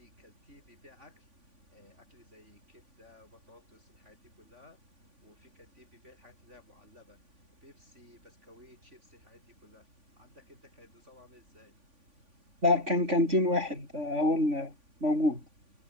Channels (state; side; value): late; left; 3.5 ms